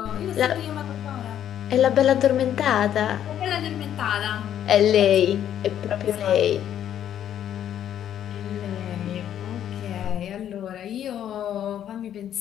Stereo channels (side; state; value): right; quieter; 10.3 dB